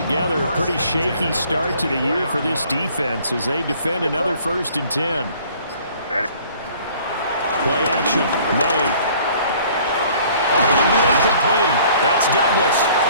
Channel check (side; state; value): both; inverted; correlation -0.55